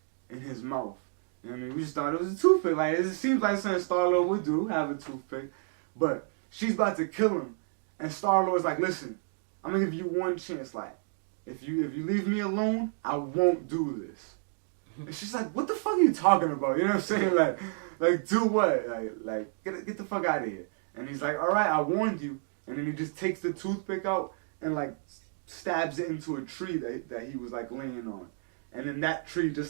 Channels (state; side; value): silent; left; 58 dB below the other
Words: in his mouth. You know what I mean? We just thought it was a toothpick. Like, it seems like something Star-Lord would do, have a toothpick. But she's about to kill him, and Star-Lord's like, listen, I'm gonna give you one chance. Like, if you leave me alone, I won't do this. And she's like, what the fuck are you talking about? You know what I'm saying? Like do what? Like get the fuck out of here. And he's like, all right, I warned you. And then he just takes the toothpick out and like stabs it into a tree that he was like laying on. And then that tree